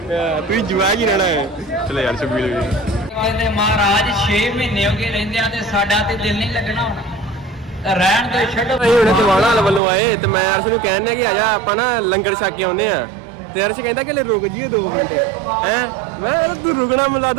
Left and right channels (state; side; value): drops out; left; at 9.8 s